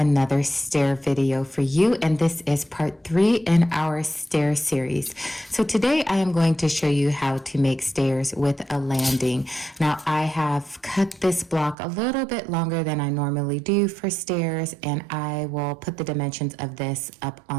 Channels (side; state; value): left; drops out; at 11.8 s